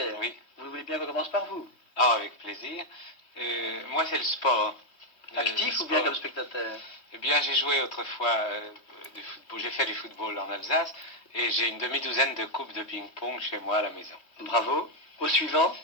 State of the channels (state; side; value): late; right; 3.1 ms